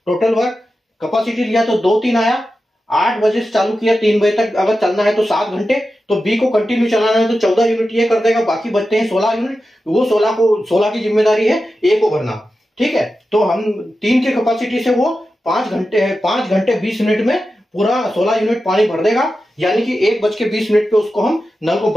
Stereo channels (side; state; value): both; normal; correlation 0.92